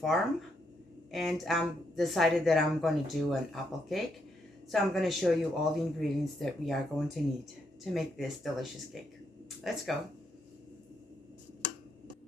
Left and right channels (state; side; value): normal; both; correlation 0.78